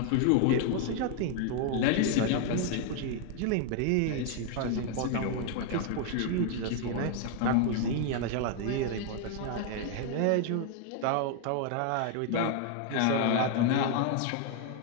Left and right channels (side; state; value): both; different; correlation 0.00